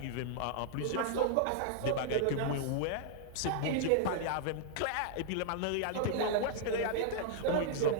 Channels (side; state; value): both; different; correlation -0.01